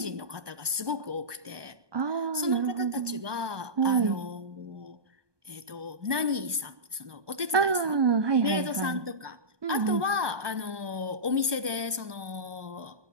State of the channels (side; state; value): left; late; 1.2 ms